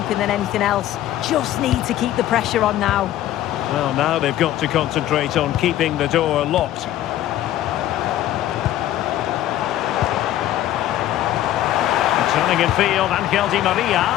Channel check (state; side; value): quieter; right; 13.2 dB